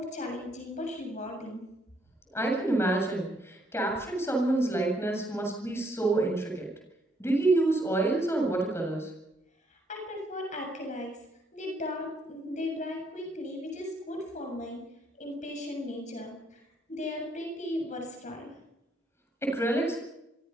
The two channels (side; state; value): both; normal; correlation 0.71